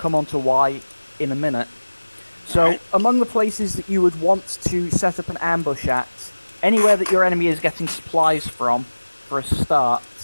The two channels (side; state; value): both; inverted; correlation -1.00